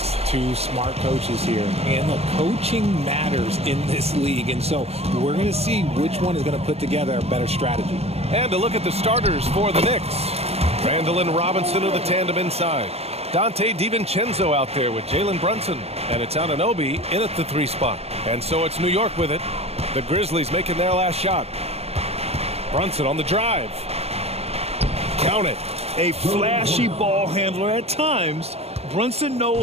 two smart coaches here. And the coaching matters in this league. And so we're going to see which one is going to put together a better strategy. And to look at the starters for the Knicks. Randall and Robinson are the tandem inside. Dante DiVincenzo out there with Jalen Brunson. And it's Anunoby in at the 3 spot. And so it's New York with it. The Grizzlies making their last shot. Brunson on the drive. Count it. A flashy ball handler at times. Brunson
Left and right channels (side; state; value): left; late; 0.30 ms